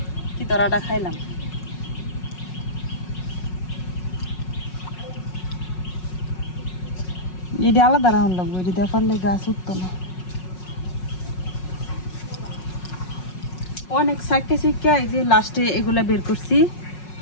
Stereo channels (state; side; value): late; right; 5.5 ms